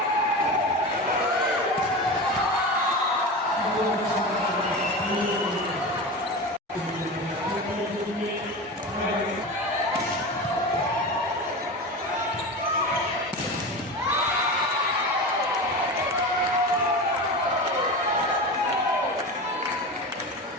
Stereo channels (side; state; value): both; normal; correlation 0.26